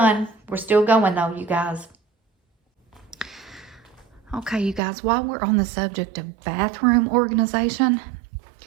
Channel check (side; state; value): left; drops out; at 4.8 s